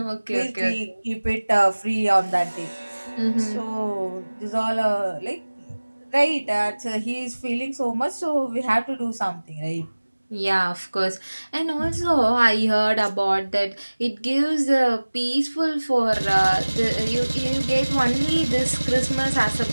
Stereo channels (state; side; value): inverted; both; correlation -1.00